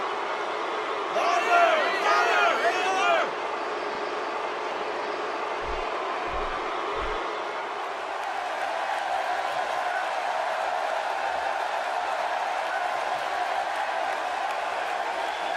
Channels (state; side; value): identical; both; correlation 1.00